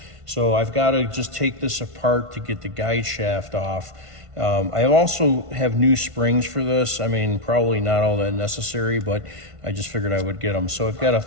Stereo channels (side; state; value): left; late; 1.5 ms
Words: So I've got to just take this apart to get the guide shaft off. I also have new springs for this. I mean, probably not all that necessary, but I just figured I would get them. So I've got a